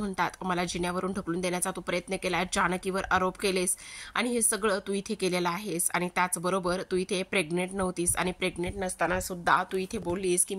मला जिन्यावरून ढकलून देण्याचा तू प्रयत्न केला, जानकीवर आरोप केलेस आणि हे सगळं तू इथे केलेलं आहेस. आणि त्याचबरोबर तू इथे प्रेग्नेंट नव्हतीस आणि प्रेग्नेंट नसताना सुद्धा तू इथे बोललीस की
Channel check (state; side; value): identical; both; correlation 1.00